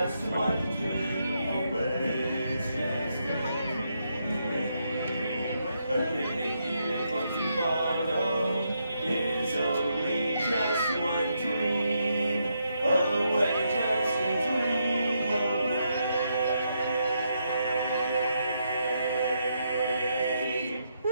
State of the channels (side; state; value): both; inverted; correlation -0.79